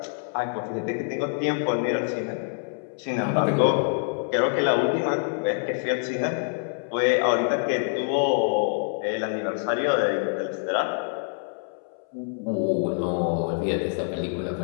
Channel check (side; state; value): right; silent; 61 dB below the other